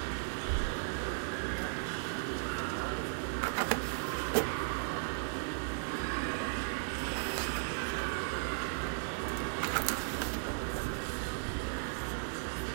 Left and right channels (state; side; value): silent; left; 54 dB below the other